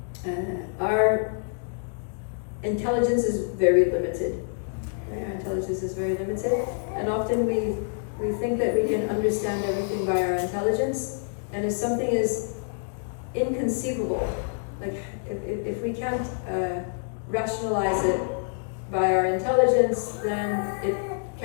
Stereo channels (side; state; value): right; silent; digital silence